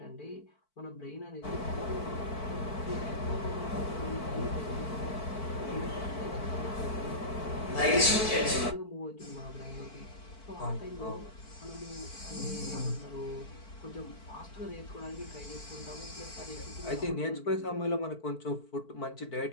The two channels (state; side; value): late; right; 4.5 ms